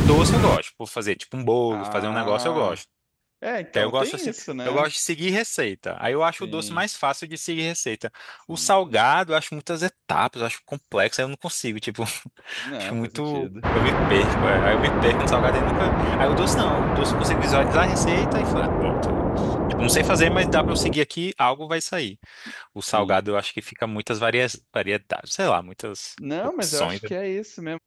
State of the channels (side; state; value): both; identical; correlation 1.00